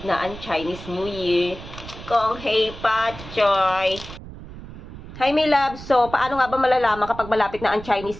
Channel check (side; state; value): right; noise; rumble, 14 dB below the sound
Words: na ang Chinese New Year. Kong Hei Pa Choy. Hi, my love. So, paano nga ba malalaman kapag malapit na ang